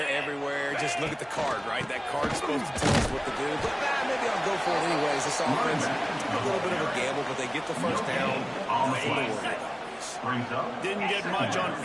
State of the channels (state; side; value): identical; both; correlation 1.00